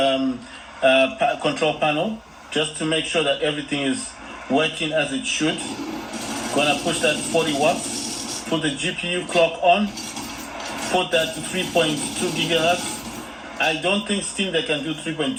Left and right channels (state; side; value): identical; both; correlation 1.00